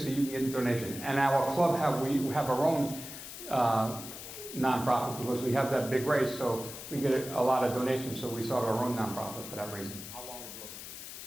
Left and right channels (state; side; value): noise; left; hiss, 11 dB below the sound